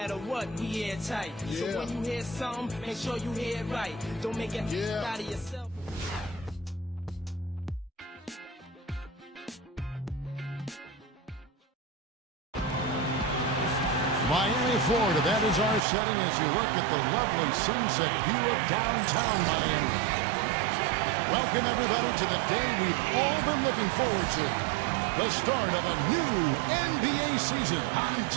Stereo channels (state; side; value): drops out; left; at 15.8 s